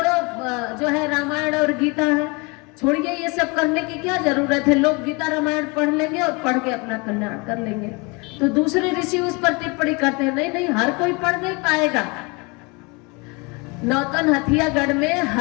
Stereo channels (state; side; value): quieter; right; 28.5 dB